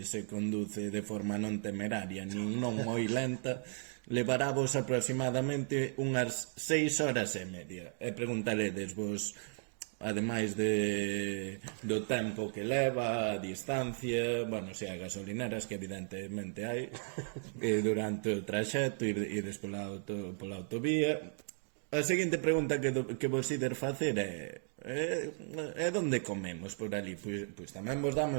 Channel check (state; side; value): silent; left; 54 dB below the other